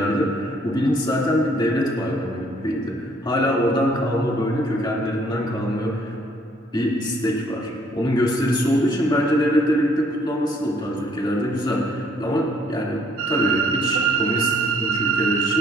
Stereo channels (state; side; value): normal; both; correlation 0.63